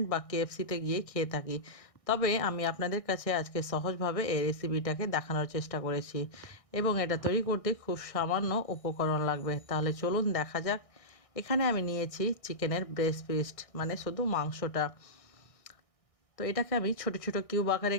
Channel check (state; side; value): late; right; 1.6 ms